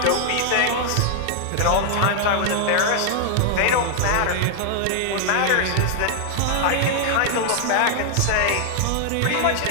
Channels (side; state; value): both; different; correlation 0.00